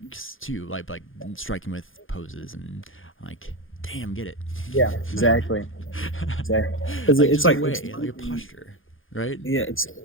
too, like striking with poses and like damn, get it. Yeah, exactly. Exactly. Because Like it's just a like, way, like a posture, right? yeah, it's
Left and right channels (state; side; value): late; right; 0.58 ms